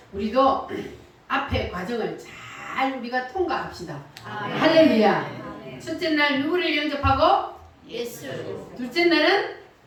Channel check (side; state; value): both; identical; correlation 1.00